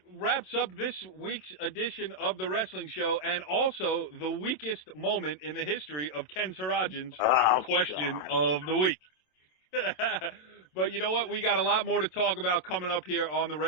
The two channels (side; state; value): right; late; 27 ms